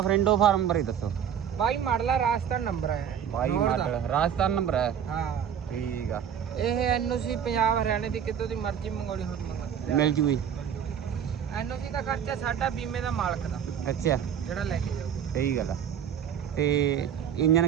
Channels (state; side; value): quieter; left; 8.7 dB